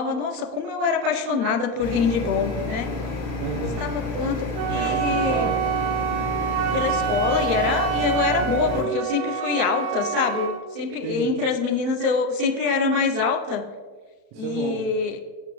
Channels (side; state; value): left; late; 34 ms